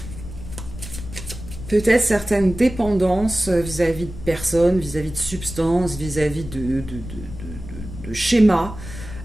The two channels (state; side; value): noise; left; rumble, 11 dB below the sound